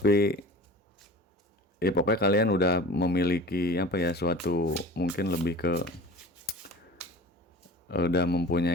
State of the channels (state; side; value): normal; both; correlation 0.39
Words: ya pokoknya kalian udah memiliki suatu, mungkin lebih ke udah